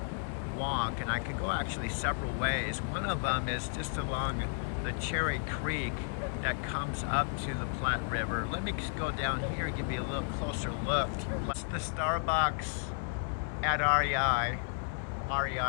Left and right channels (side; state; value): right; silent; 56 dB below the other